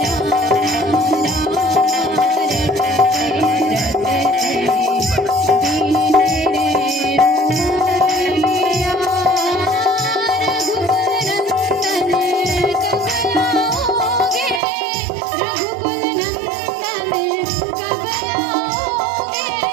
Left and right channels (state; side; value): drops out; left; at 14.6 s